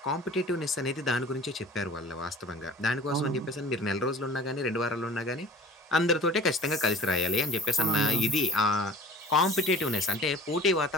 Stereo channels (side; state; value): both; normal; correlation 0.44